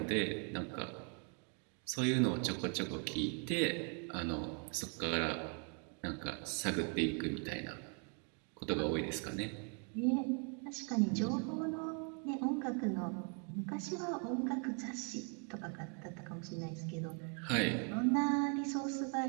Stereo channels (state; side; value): quieter; left; 39.1 dB